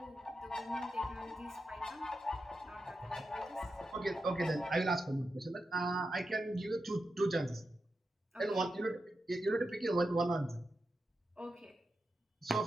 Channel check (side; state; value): both; normal; correlation 0.88